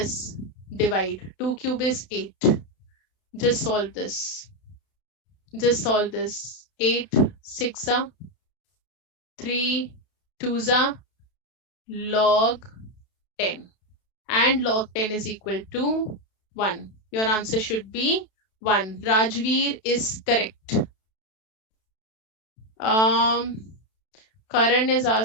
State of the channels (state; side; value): late; right; 32 ms